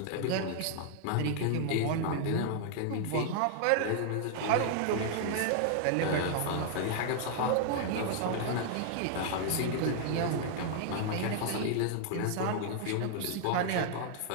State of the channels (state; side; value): different; both; correlation -0.01